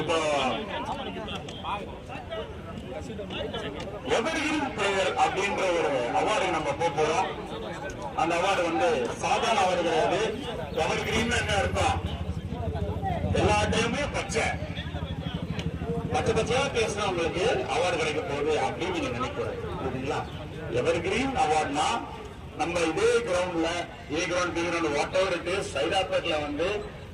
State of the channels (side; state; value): both; identical; correlation 1.00